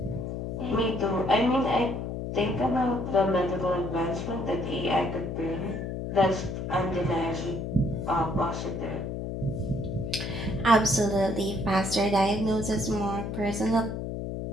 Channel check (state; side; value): noise; left; hum, 4 dB below the sound